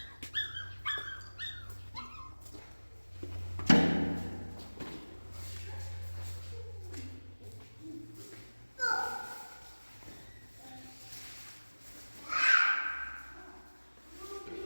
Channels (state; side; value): inverted; both; correlation -1.00